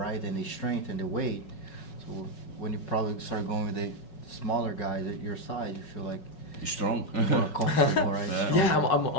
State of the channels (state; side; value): late; right; 5.4 ms